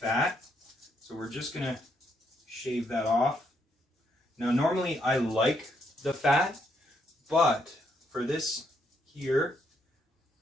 so we're just going to shave that off. Now normally I like the fat, but for this here,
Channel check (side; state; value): both; normal; correlation 0.75